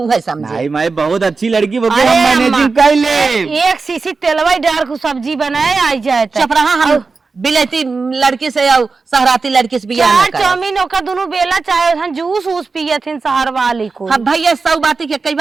है समझे। नहीं मैं बहुत अच्छी लड़की वो हम मैनेजिंग कर ले एक सीसी तेलवा डाल को सब्जी बनाए आई जाए चुप रहा हम बिलैती लड़की से और सहराती लड़की से बियाह ना करे। चाउमीन ओका दोनों बेला चाहे हम जूस उस पिए थे शहर वाली को। हाँ भैया सौ बाती के कई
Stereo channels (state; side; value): quieter; left; 4.3 dB